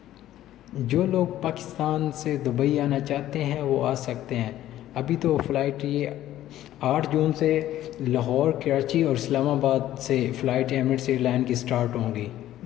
जो लोग पाकिस्तान से दुबई आना चाहते हैं वो आ सकते हैं। अभी तो फ़्लाइट ये 8 जून से लाहौर, कराची और इस्लामाबाद से फ़्लाइट एमिरेट्स एयरलाइन की स्टार्ट होंगी।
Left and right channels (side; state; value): right; quieter; 13.3 dB